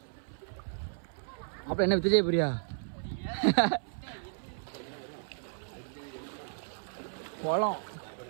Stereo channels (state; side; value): silent; left; 55 dB below the other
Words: அப்புறம் என்ன விஜய் பிரியா